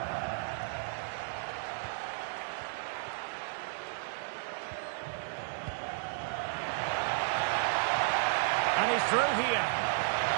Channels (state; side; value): silent; left; digital silence